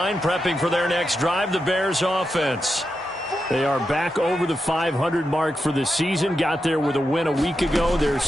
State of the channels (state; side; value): normal; both; correlation 0.87